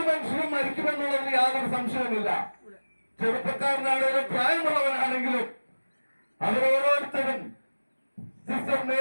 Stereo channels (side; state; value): both; inverted; correlation -1.00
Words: മനുഷ്യനും മരിക്കുമെന്നുള്ളതിൽ യാതൊരു സംശയവുമില്ല. ചെറുപ്പക്കാരനാണെങ്കിലും പ്രായമുള്ളവനാണെങ്കിലും അവരോരോരുത്തരും സിസ്റ്റർ